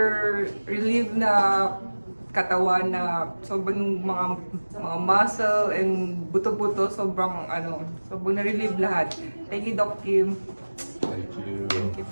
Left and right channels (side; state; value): both; inverted; correlation -1.00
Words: relief na katawan na sobrang mga muscle and buto-buto, sobrang na-relieve lahat. Thank you, Doc Kim. Thank you. Thank you